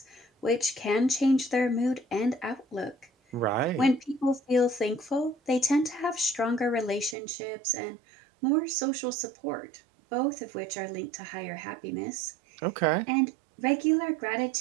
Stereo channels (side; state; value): left; drops out; at 7.2 s